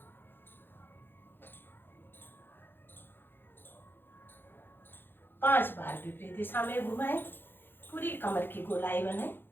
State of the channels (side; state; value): right; late; 0.10 ms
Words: 5 बार विपरीत दिशा में घुमाएं, पूरी कमर की गोलाई बनाएं।